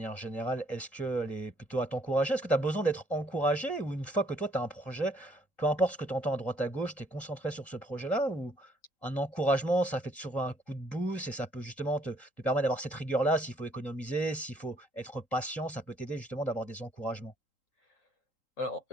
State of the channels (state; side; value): late; right; 3.8 ms